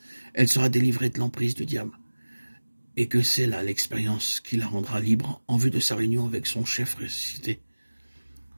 elle sera délivrée de l'emprise du diable. Et que c'est là l'expérience qui la rendra libre en vue de sa réunion avec son chef ressuscité.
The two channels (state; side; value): inverted; both; correlation -1.00